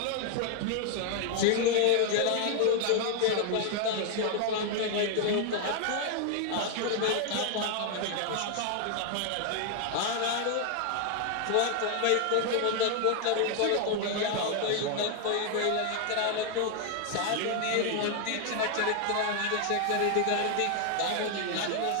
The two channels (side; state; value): both; different; correlation 0.00